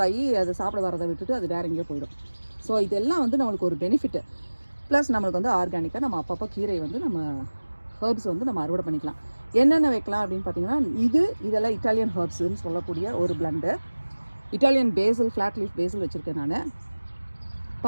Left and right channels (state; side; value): inverted; both; correlation -1.00